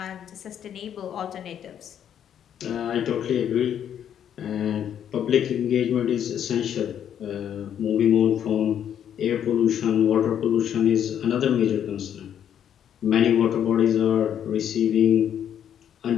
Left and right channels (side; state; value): right; quieter; 9.4 dB